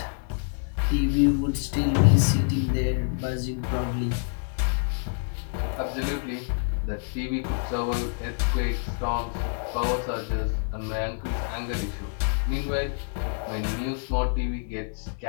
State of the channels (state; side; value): silent; right; 60 dB below the other